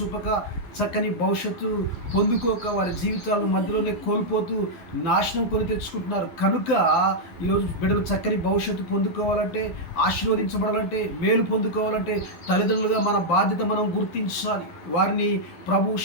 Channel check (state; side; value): late; right; 12 ms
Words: చక్కని భవిష్యత్తు పొందుకోక వారి జీవితాలను మధ్యలోనే కోల్పోతూ నాశనం కొని తెచ్చుకుంటున్నారు. కనుక ఈరోజు బిడ్డలు చక్కని భవిష్యత్తు పొందుకోవాలంటే, ఆశీర్వదించబడాలంటే, మేలు పొందుకోవాలంటే తల్లిదండ్రులుగా మన బాధ్యత మనం గుర్తించాలి. వారిని ప్రభు